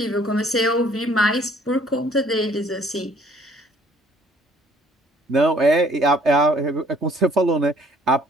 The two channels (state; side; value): normal; both; correlation 0.59